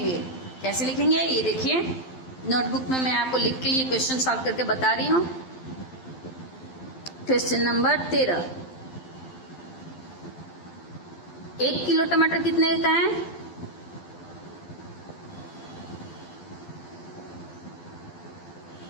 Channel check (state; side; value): late; right; 12 ms